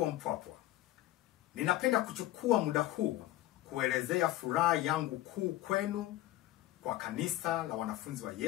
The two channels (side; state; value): right; quieter; 15.8 dB